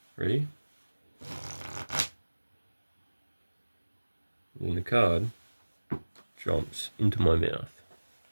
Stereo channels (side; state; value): both; inverted; correlation -1.00